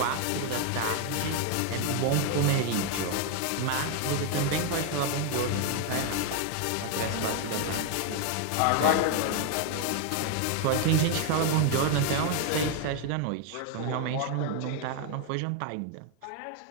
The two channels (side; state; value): both; different; correlation 0.01